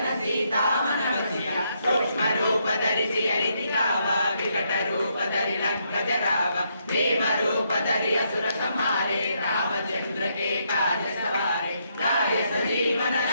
सीता मन बसिया सूक्ष्म रूप धरि सियहि दिखावा विकट रूप धरि लंक जरावा भीम रूप धरि असुर संहारे रामचंद्र के काज सवारे लाए सजीवन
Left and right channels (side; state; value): both; inverted; correlation -0.76